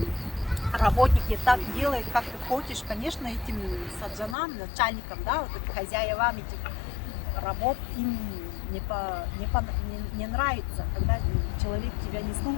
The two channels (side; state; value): right; drops out; at 4.4 s